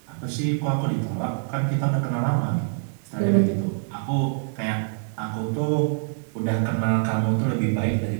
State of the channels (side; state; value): left; silent; 62 dB below the other